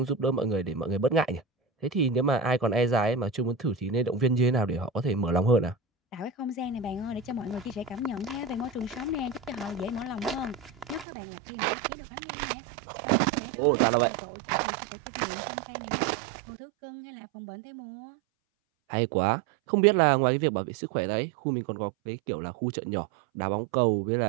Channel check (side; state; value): left; drops out; at 11.1 s